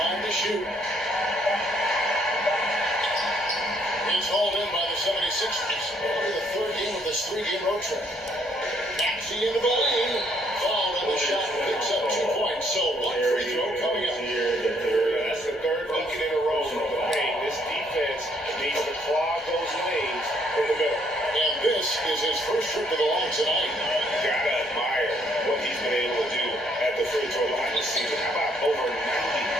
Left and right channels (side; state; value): both; normal; correlation 0.68